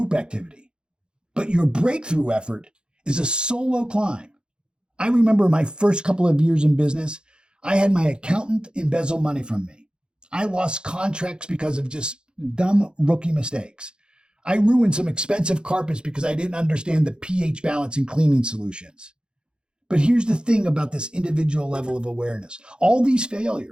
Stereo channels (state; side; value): late; left; 0.049 ms